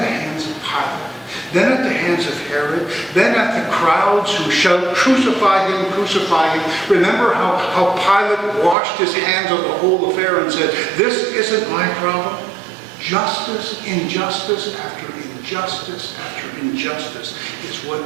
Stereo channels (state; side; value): drops out; left; at 8.8 s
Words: hands of Pilate, then at the hands of Herod, then at the crowds who shout, "Crucify him, crucify him." Remember how Pilate washed his hands of the whole affair and said, "This isn't my problem." Justice, injustice after injustice after injustice is